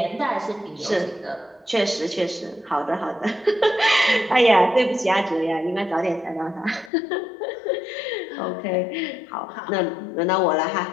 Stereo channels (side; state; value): right; drops out; at 6.9 s